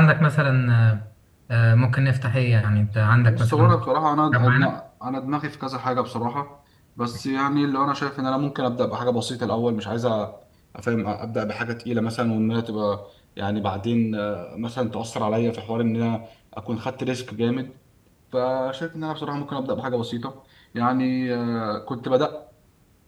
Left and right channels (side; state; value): both; identical; correlation 1.00